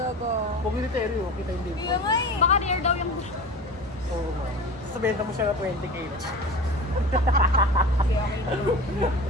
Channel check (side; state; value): both; normal; correlation 0.33